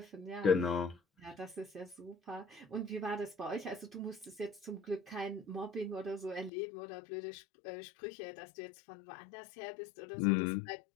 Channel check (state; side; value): drops out; right; at 6.5 s